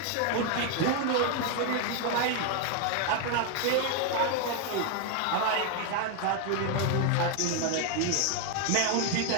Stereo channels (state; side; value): different; both; correlation 0.00